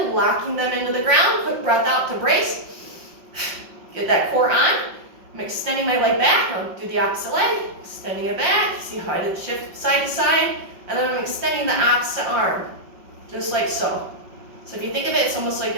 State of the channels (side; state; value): left; late; 5.7 ms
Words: locking them into the ground. Quick breath out to brace. Get that core on. I'm extending my leg back. I'll do the opposite leg. Extending it back. See how I did shift side to side. And then I'm extending the opposite arm. Just like so. So if you think of it, it's almost like